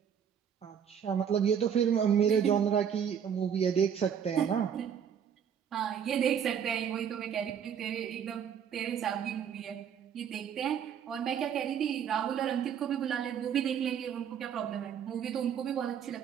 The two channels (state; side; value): quieter; left; 8.2 dB